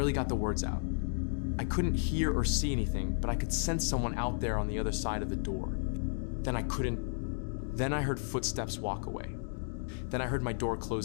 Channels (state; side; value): silent; right; digital silence